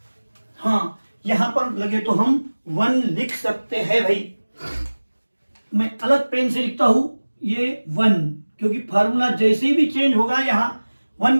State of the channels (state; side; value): inverted; both; correlation -1.00